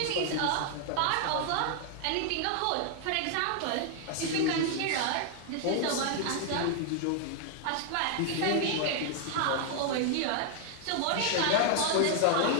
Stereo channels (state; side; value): different; both; correlation 0.00